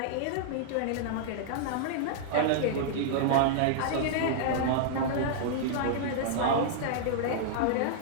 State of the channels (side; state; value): both; different; correlation -0.01